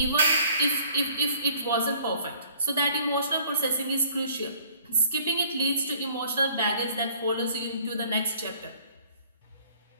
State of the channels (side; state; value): both; inverted; correlation -0.56